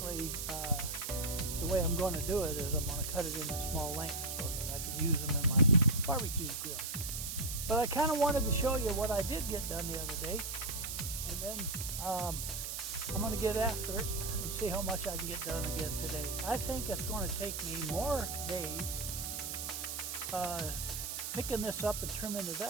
the way I'm going to do it is I'm going to cut it into small lengths so that I can use them in my barbecue grill. But I kind of wanted to show you what I did get done the other day, and then I'm going to get after it and see how much I can get done again today. I think it's going to take me more days picking this up and trimming it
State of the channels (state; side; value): noise; right; hiss, 4 dB below the sound